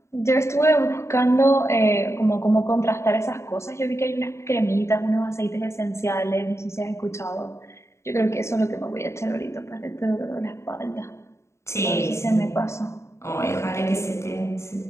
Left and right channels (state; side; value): late; right; 0.13 ms